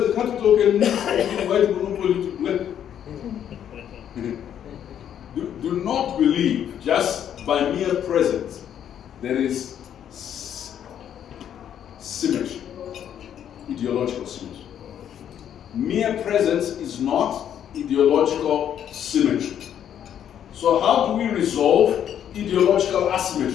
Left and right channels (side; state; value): right; quieter; 9.6 dB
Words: the capital can invite monopoly to play. Do not believe just by mere presence there is symmetry, ideological symmetry. Mere presence is not ideological symmetry. So how do we resolve ideological